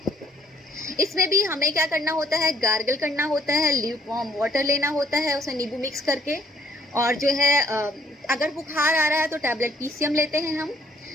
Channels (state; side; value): normal; both; correlation 0.64